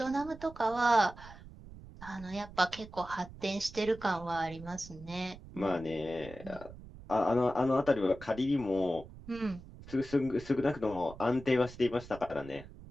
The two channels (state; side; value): noise; right; rumble, 17 dB below the sound